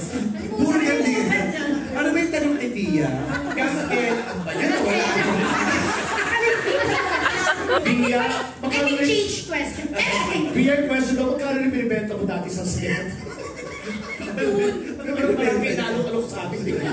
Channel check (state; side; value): identical; both; correlation 1.00